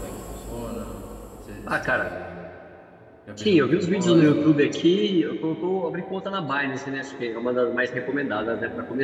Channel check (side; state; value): both; identical; correlation 1.00